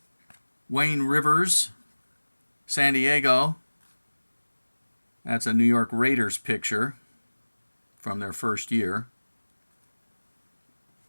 Wayne Rivers, San Diego. That's a New York Raiders picture from their first year.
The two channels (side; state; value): both; inverted; correlation -1.00